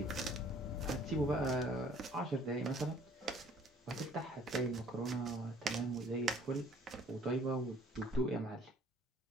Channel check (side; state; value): both; normal; correlation 0.56